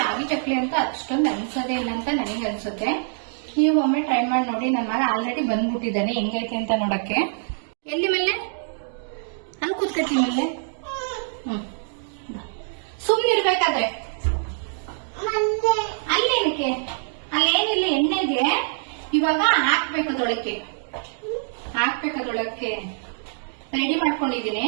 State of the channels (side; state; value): left; silent; digital silence